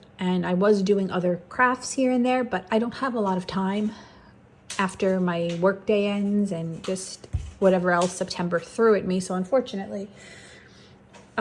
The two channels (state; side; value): identical; both; correlation 1.00